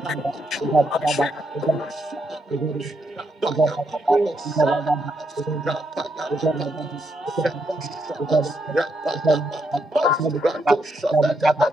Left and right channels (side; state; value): both; normal; correlation 0.79